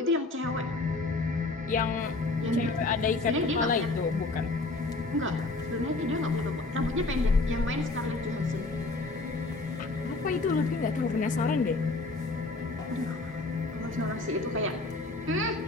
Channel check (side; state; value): right; quieter; 3.3 dB